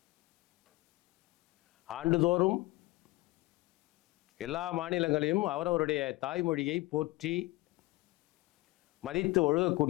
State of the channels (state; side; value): quieter; right; 20.6 dB